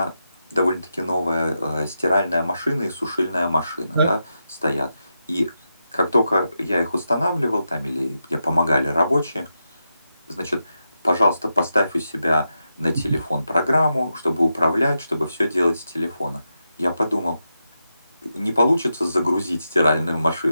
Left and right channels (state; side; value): inverted; both; correlation -0.87